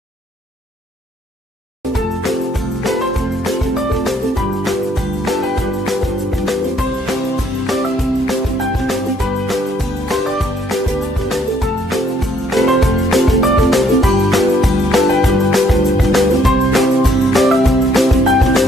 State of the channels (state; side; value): normal; both; correlation 0.66